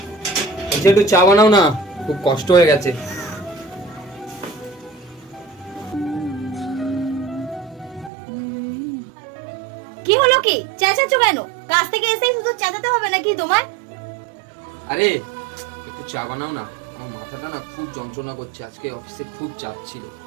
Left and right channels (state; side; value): drops out; left; at 8.1 s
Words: বলছি একটু চা বানাও না, খুব কষ্ট হয়ে গেছে। কি হলো, কি চেঁচাচ্ছ কেন? কাজ থেকে এসেই শুধু চেঁচাতে হবে নাকি তোমার? আরে একটু চা বানাও না, আমার মাথাটা না খুব যন্ত্রণা করছে। আজকে অফিসে খুব চাপ ছিল,